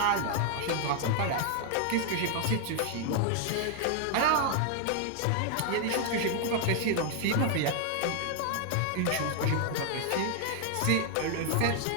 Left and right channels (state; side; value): different; both; correlation 0.00